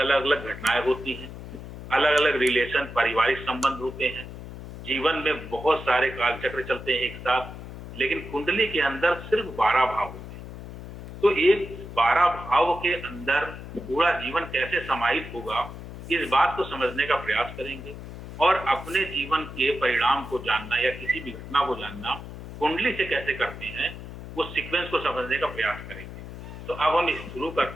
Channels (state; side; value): noise; left; hum, 12 dB below the sound